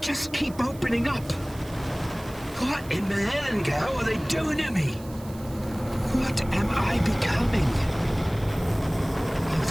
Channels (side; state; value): right; noise; hiss, 21 dB below the sound